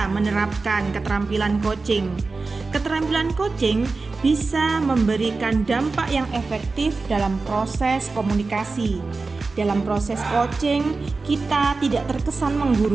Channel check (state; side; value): quieter; left; 3.9 dB